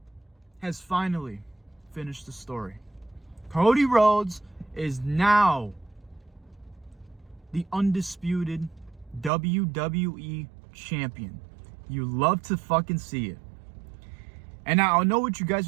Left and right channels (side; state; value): left; drops out; at 9.3 s